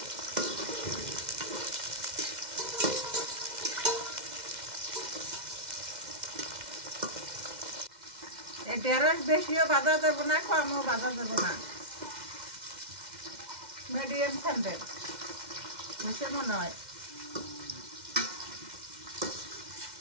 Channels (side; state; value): left; late; 2.1 ms